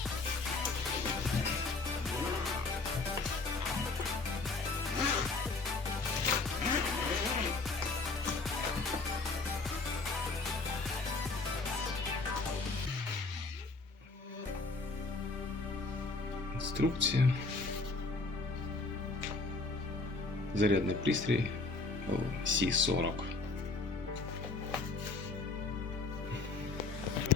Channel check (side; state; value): right; quieter; 3.7 dB